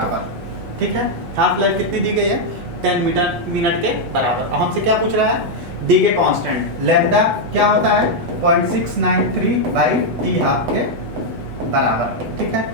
ठीक है, हाफ लाइफ कितनी दी गई है, 10 मिनट के बराबर। अब हमसे क्या पूछ रहा है, डी के कांस्टेंट लैम्डा क्या होता है 0.693/T हाफ के बराबर। ठीक है,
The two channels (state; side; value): late; left; 8.2 ms